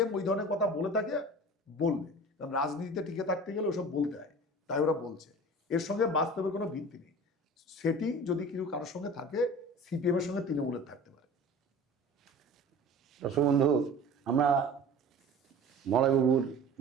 ওই ধরনের কথা বলে থাকে, বলবে, কারণ রাজনীতিতে টিকে থাকতে গেলে ওসব বলতে হয়, তাই ওরা বলছে। এর সঙ্গে বাস্তবের কোনো ভিত্তি নেই। সেটিং যদি কিছু কারোর সঙ্গে থাকে, সিপিএম এর সঙ্গে তৃণমূলের থাকতে পারে। দর্শক বন্ধু, আমরা মলয়বাবুর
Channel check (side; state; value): both; normal; correlation 0.40